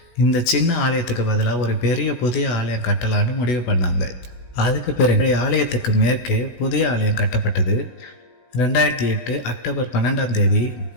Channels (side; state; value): right; late; 16 ms